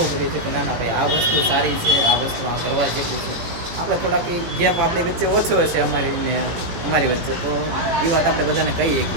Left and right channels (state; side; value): late; left; 18 ms